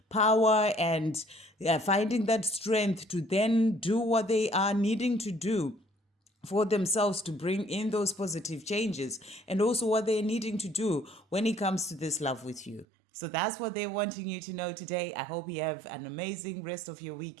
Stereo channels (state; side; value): drops out; left; at 12.9 s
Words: power and finding that strength to then do what they are needing to do for themselves to bring in those positive changes, and also what they're needing to do when it comes to this love with you. So that's what they're wanting you to know today. I hope you have an amazing rest of your